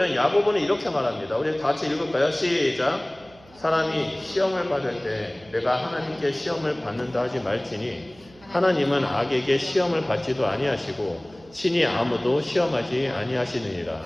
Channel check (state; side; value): noise; right; hum, 26 dB below the sound